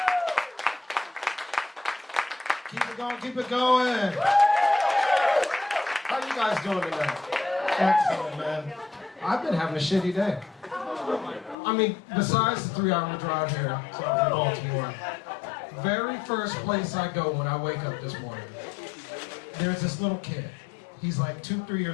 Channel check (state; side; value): drops out; right; at 11.6 s